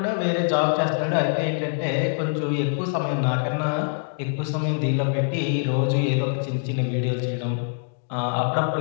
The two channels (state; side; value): silent; right; digital silence